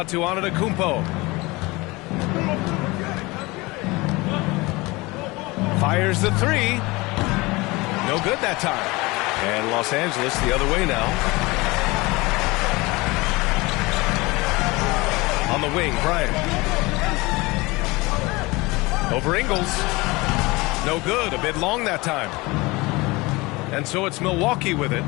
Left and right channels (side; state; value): right; quieter; 23.1 dB